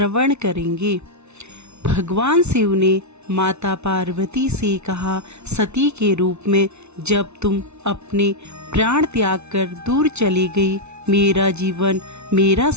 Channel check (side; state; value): left; late; 0.81 ms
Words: करेंगे। भगवान शिव ने माता पार्वती से कहा, सती के रूप में जब तुम अपने प्राण त्याग कर दूर चली गई, मेरा जीवन, मेरा